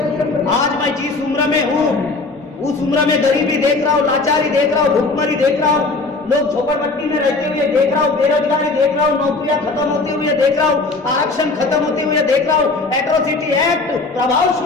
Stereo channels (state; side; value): quieter; right; 3.6 dB